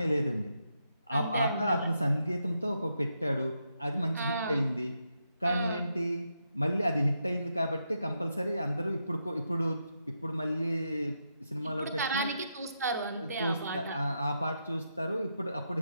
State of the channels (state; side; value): inverted; both; correlation -0.82